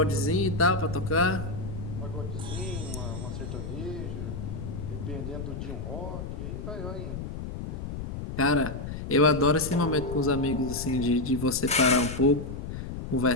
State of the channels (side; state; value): left; noise; rumble, 7 dB below the sound